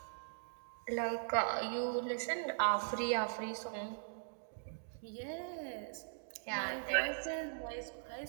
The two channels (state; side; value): silent; left; digital silence